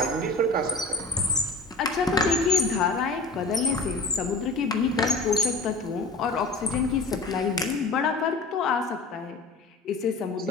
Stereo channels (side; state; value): right; quieter; 3.4 dB